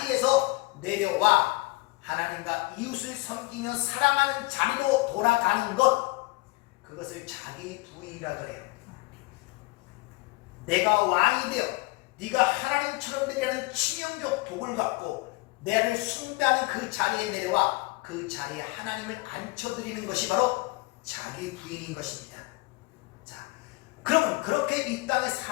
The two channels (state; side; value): quieter; right; 23.8 dB